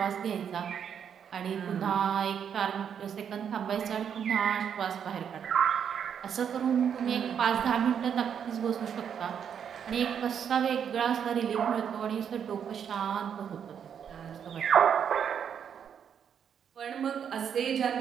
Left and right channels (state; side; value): quieter; left; 8.0 dB